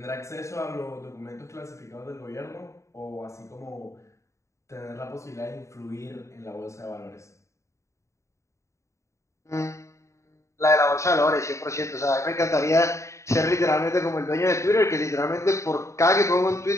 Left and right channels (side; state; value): right; late; 0.14 ms